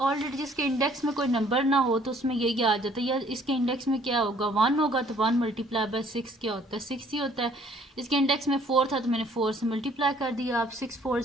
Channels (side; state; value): both; normal; correlation 0.59